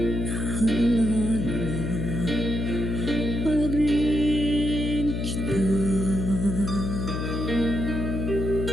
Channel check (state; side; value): noise; left; hum, 2 dB below the sound